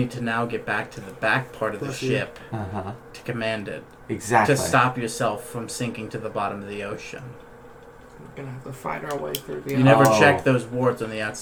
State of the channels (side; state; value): both; identical; correlation 1.00